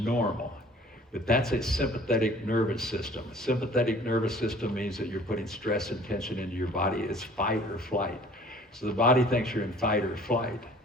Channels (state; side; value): normal; both; correlation 0.51